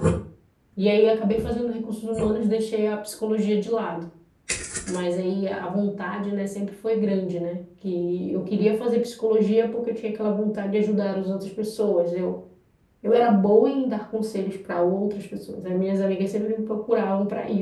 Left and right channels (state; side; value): identical; both; correlation 1.00